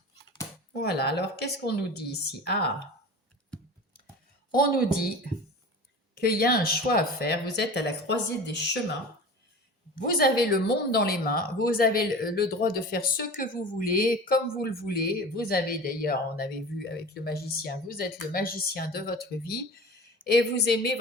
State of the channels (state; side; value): normal; both; correlation 0.35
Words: voilà, alors qu'est-ce qu'on nous dit ici? On nous dit qu'il y a un choix à faire, vous êtes à la croisée des chemins, vous avez le monde dans les mains, vous avez le droit de faire ce que vous voulez, comme vous le voulez, vous avez d'ailleurs, on avait vu avec le magicien, vous êtes le magicien de votre vie et vous aimez